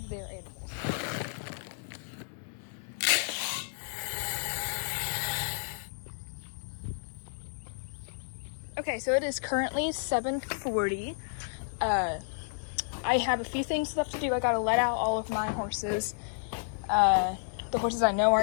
their animals. Okay, so it is currently 7:40. I have a few things left to do. I gotta let out all of my horses. The horses I know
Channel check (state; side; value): silent; right; digital silence